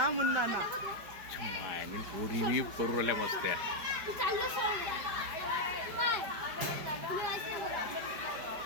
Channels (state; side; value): late; left; 5.0 ms